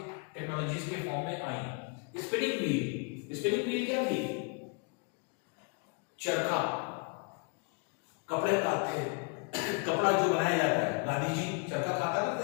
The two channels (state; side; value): quieter; right; 35.8 dB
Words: टेक्नोलॉजीज के फॉर्म में आई। स्पिनिंग व्हील, स्पिनिंग व्हील क्या थी, चरखा, कपड़े काटते, कपड़ा जो बनाया जाता है, गांधी जी चरखा खाता